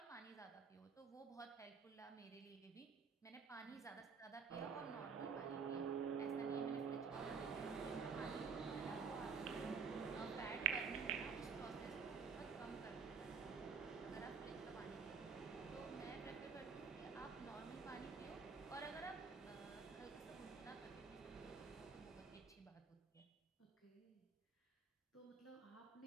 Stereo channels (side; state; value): left; quieter; 5.6 dB